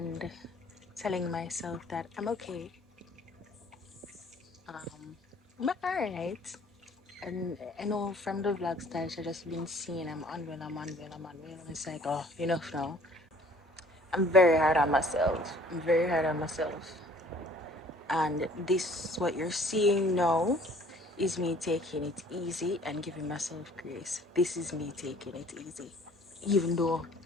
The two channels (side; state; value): both; normal; correlation 0.55